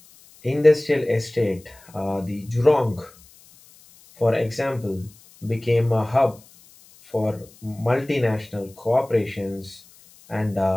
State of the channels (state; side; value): noise; left; hiss, 26 dB below the sound